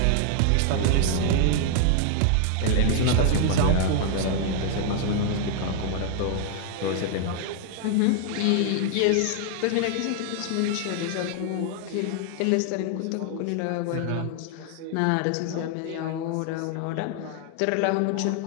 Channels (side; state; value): both; different; correlation 0.00